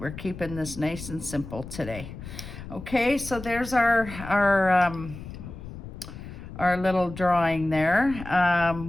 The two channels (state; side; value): noise; left; rumble, 12 dB below the sound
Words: keeping this nice and simple today. Okay, so there's our little drawing there.